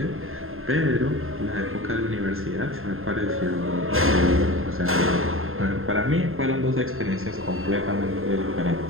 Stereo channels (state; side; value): late; left; 0.61 ms